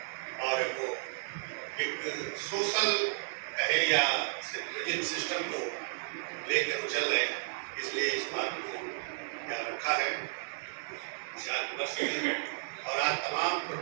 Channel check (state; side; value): silent; left; digital silence